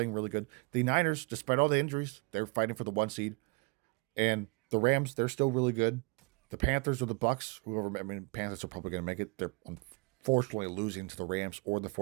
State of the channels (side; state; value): left; quieter; 29.0 dB